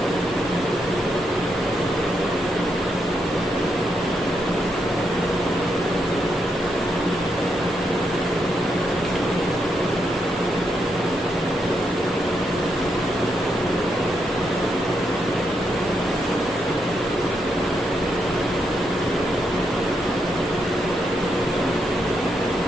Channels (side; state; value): both; normal; correlation 0.80